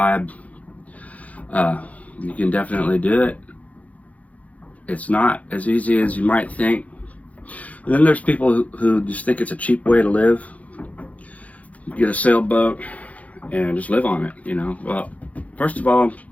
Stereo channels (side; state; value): right; late; 0.069 ms